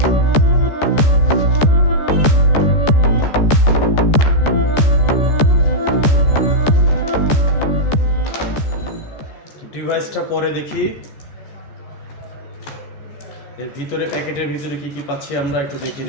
ডিভাইসটা পরে দেখি, এর ভিতরে প্যাকেটের ভিতরে কি কি পাচ্ছি আমরা একটু দেখে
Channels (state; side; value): late; right; 14 ms